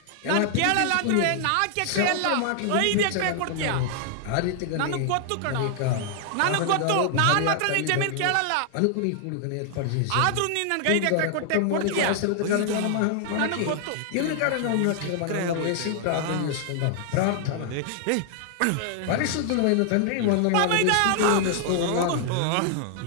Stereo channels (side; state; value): both; different; correlation 0.00